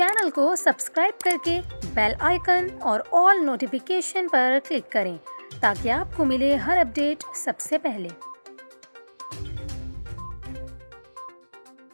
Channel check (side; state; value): both; inverted; correlation -1.00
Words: को सब्सक्राइब करके बेल आइकन और ऑल नोटिफिकेशन पर क्लिक करें ताकि आपको मिले हर अपडेट सबसे पहले।